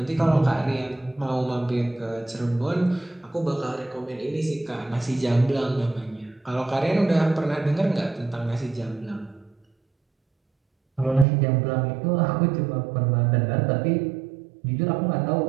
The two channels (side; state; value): left; drops out; at 11.2 s